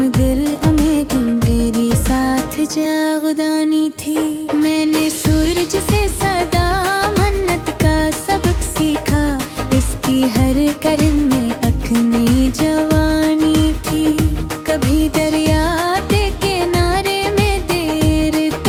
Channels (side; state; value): both; identical; correlation 1.00